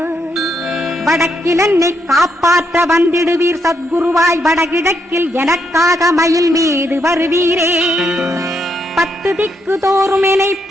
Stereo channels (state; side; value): normal; both; correlation 0.78